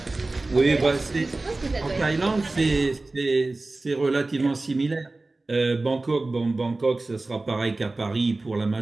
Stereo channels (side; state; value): left; quieter; 3.1 dB